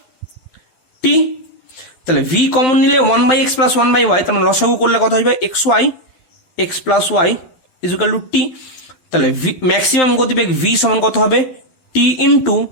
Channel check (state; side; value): late; right; 12 ms